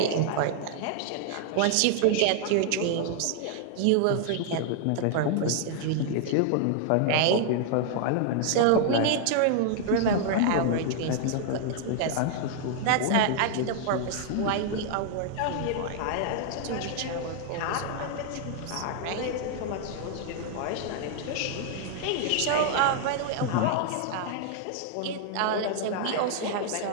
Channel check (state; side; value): different; both; correlation 0.00